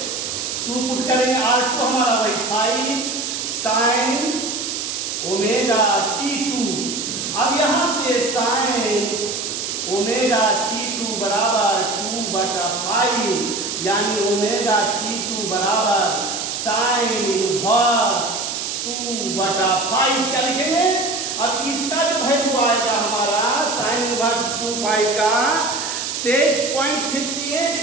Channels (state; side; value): noise; right; hiss, 4 dB below the sound